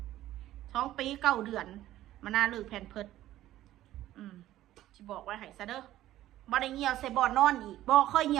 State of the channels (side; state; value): left; quieter; 14.1 dB